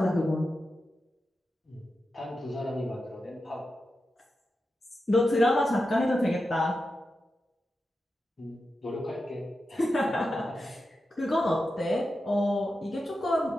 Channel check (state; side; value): normal; both; correlation 0.90